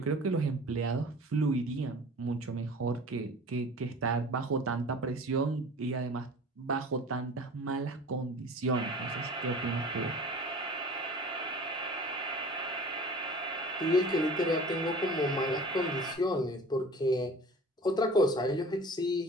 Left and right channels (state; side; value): normal; both; correlation 0.42